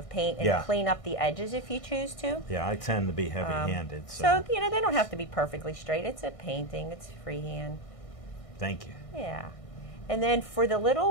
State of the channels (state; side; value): late; right; 1.6 ms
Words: paint and Yeah. clean up the edges if you choose to. Yeah, I tend to be heavy-handed, So they don't have to be perfectly straight. It's a painting. It's freehand. thank you. Yeah. And then for the